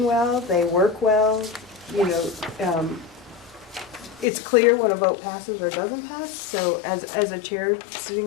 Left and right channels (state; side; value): drops out; right; at 4.2 s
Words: well, they work well, you know, it's clear when a vote passes or doesn't pass, so as a chair